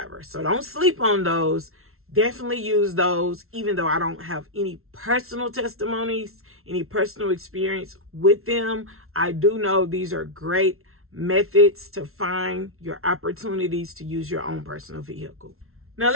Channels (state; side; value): late; left; 0.62 ms